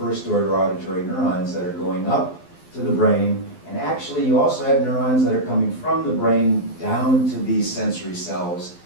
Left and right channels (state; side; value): late; right; 12 ms